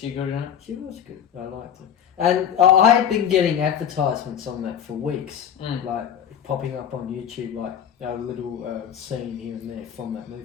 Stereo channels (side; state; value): right; quieter; 9.0 dB